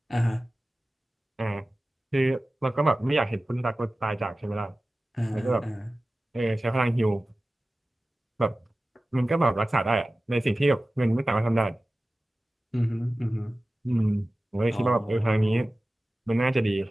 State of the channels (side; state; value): both; normal; correlation 0.96